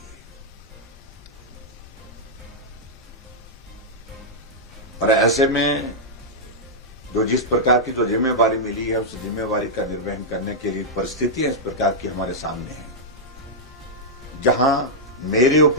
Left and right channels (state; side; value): normal; both; correlation -0.08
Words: और ऐसे में जो जिस प्रकार की जो जिम्मेवारी मिली है उस जिम्मेवारी का निर्वहन करने के लिए परिस्थितियां इस प्रकार की हमारे सामने हैं, जहां मेरे